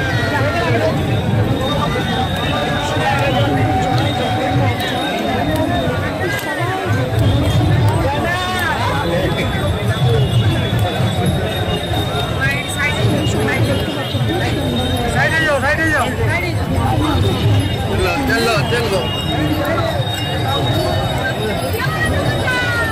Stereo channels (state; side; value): identical; both; correlation 1.00